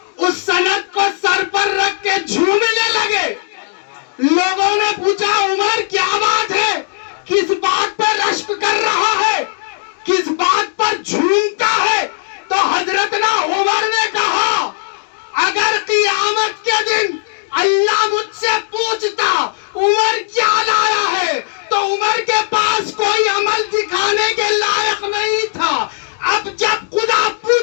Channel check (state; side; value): silent; right; digital silence